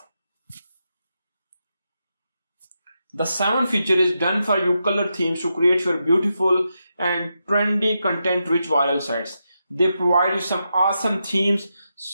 The 7th feature is done for you color themes to create your beautiful and trendy content rich viral sites. They provide you some awesome themes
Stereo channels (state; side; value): inverted; both; correlation -0.86